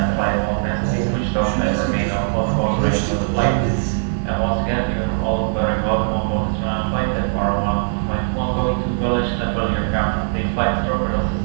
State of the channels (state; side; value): silent; left; digital silence